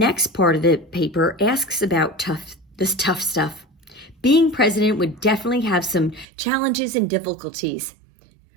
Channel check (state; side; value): drops out; left; at 6.2 s